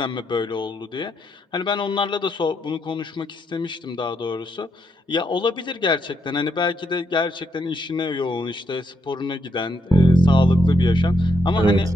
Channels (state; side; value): normal; both; correlation 0.78